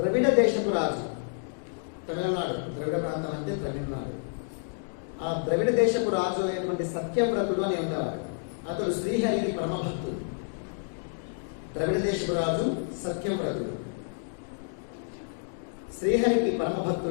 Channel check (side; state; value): right; silent; digital silence